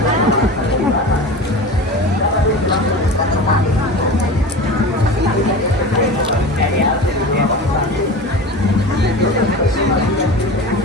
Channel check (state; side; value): normal; both; correlation 0.32